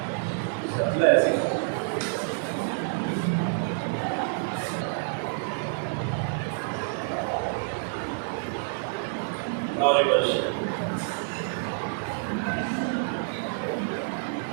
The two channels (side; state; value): left; silent; 59 dB below the other